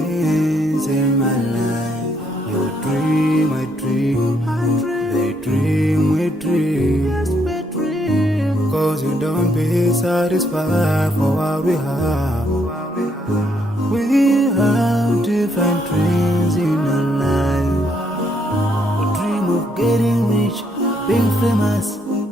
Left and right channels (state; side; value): normal; both; correlation 0.73